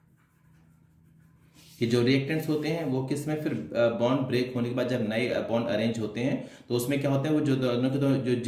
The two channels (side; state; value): both; identical; correlation 1.00